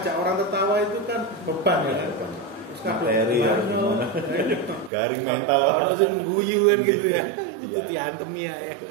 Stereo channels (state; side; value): drops out; left; at 4.9 s